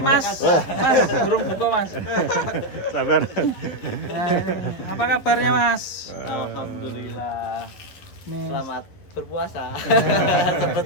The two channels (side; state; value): right; late; 11 ms